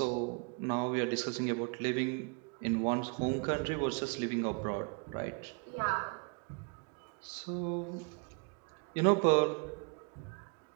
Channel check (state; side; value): quieter; left; 37.3 dB